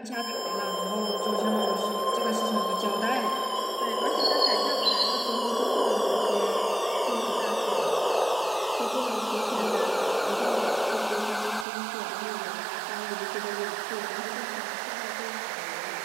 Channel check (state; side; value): drops out; left; at 11.7 s